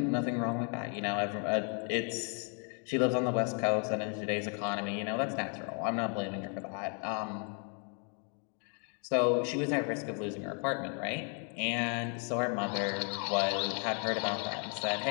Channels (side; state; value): right; quieter; 39.6 dB